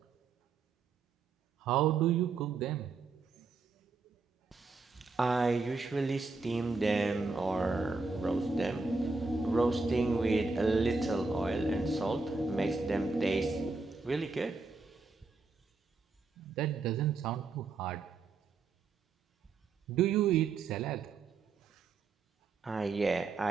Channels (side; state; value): left; quieter; 4.1 dB